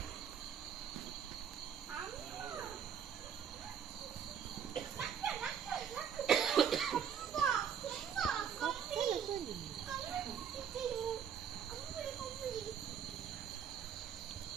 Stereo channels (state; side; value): quieter; left; 7.9 dB